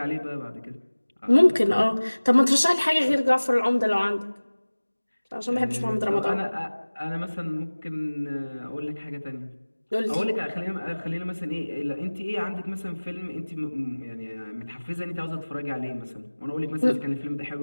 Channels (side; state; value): both; inverted; correlation -1.00